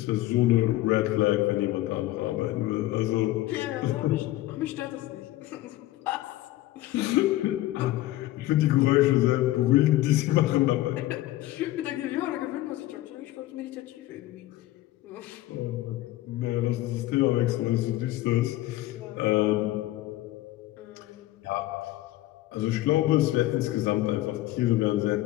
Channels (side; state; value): right; quieter; 16.1 dB